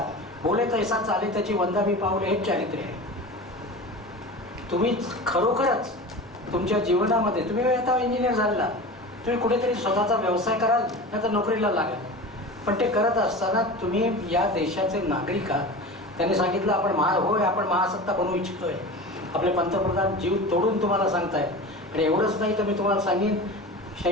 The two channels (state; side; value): normal; both; correlation 0.32